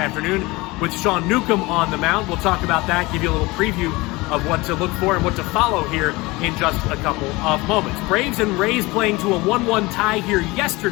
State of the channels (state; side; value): quieter; right; 22.4 dB